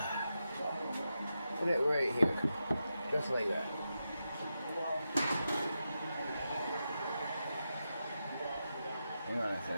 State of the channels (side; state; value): both; inverted; correlation -0.88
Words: Put it right here. Just like that. Hang on a